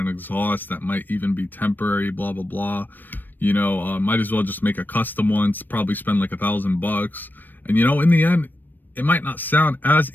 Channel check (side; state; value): right; late; 0.091 ms